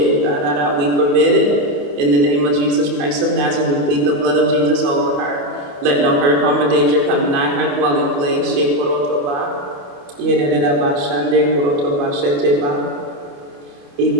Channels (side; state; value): left; late; 28 ms